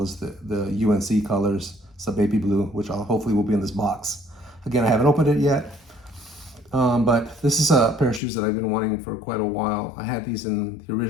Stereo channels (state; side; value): drops out; right; at 8.2 s